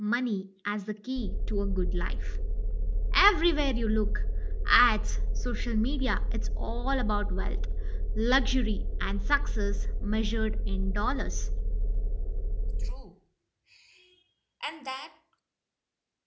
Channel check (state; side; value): identical; both; correlation 1.00